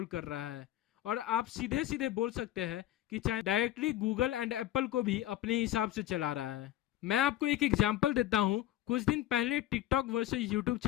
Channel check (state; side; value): quieter; right; 13.6 dB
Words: कर रहा है। और आप सीधे सीधे बोल सकते हैं कि China directly Google and Apple को भी अपने हिसाब से चला रहा है। मैं आपको एक एग्जांपल देता हूं। कुछ दिन पहले टिकटॉक वर्सेस यूट्यूब